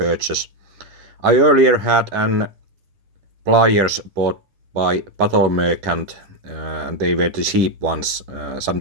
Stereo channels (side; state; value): left; late; 10 ms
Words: I earlier had an pliers bought by Battle Merchant, and they were the cheap ones,